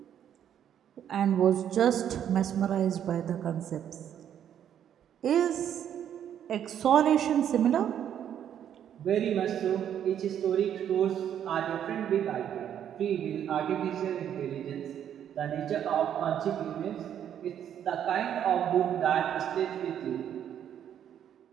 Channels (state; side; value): quieter; left; 9.7 dB